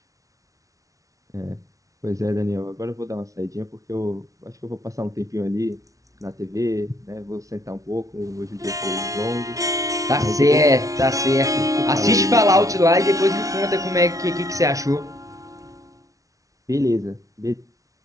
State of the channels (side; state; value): left; late; 0.17 ms